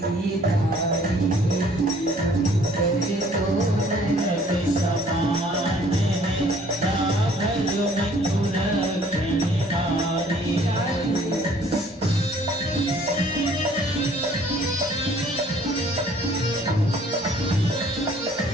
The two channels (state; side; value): normal; both; correlation 0.57